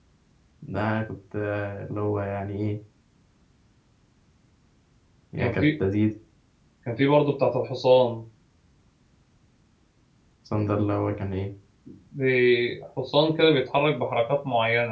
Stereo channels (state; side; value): identical; both; correlation 1.00